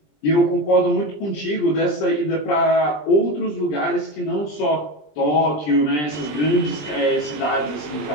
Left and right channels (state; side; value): late; right; 20 ms